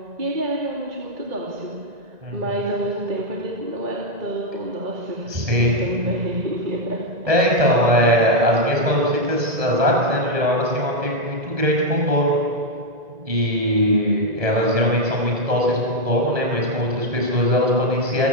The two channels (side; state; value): left; late; 1.9 ms